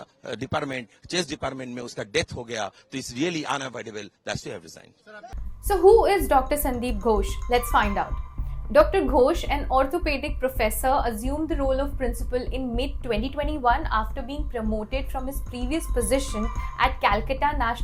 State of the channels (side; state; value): both; identical; correlation 1.00